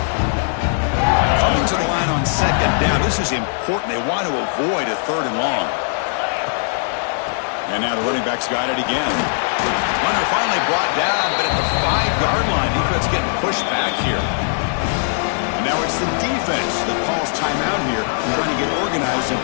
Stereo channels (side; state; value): right; silent; digital silence